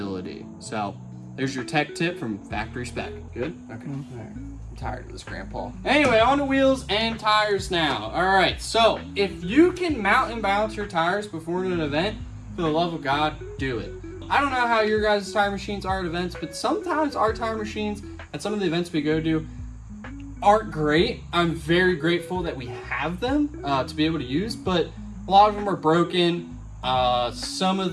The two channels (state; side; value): identical; both; correlation 1.00